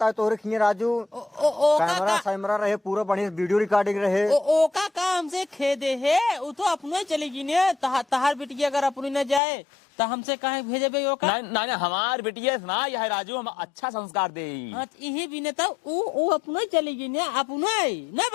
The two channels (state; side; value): drops out; right; at 9.4 s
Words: आए तोरे खिए राजू, कैमरा सैमरा रहे पूरा बढ़िया, वीडियो रिकॉर्डिंग रहे। ओ का काम से खेदे है, वो तो अपने चलेगी ने, तहार बेटी अगर अपनी न जाए तो हमसे कहे भेजे बे ओका? नहीं हमार बेटी ना यह राजू, हम अच्छा संस्कार दे। यही भी तो वो अपने चलेगी ने, अपने न